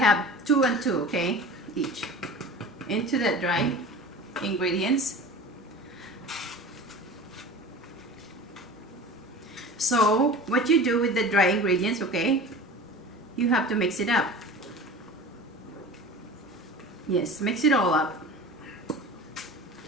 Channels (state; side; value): normal; both; correlation 0.37